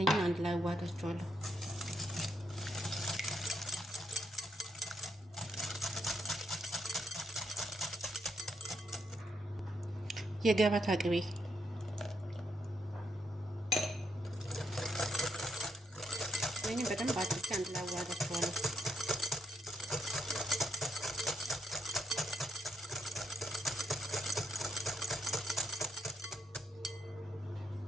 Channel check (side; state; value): both; normal; correlation 0.77